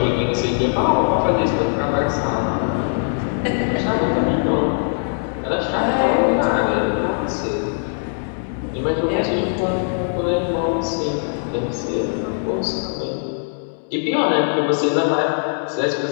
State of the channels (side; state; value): right; silent; 65 dB below the other